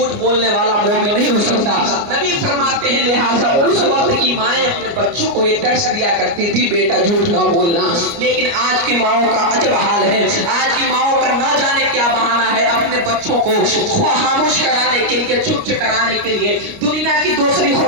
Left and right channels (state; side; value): late; left; 29 ms